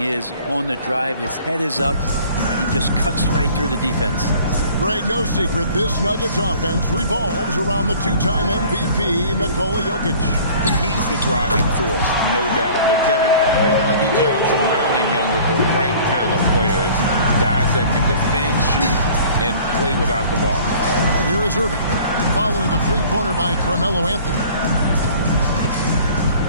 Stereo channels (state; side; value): inverted; both; correlation -0.49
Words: is on the drive. His head is up, and he just cuts right through the defense. Greg, no secret, this Nuggets offense revolves around the two-time MVP, Nikola Jokic. He's the driving force, no doubt. But, Kevin, they've done a good job surrounding him with the right kind of players, guys that can defend, shoot, and play without the ball. And here is Irving, following the three-pointer by Carmelo Anthony.